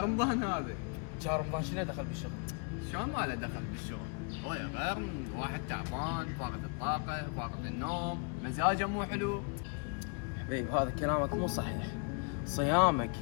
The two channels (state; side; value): quieter; right; 36.6 dB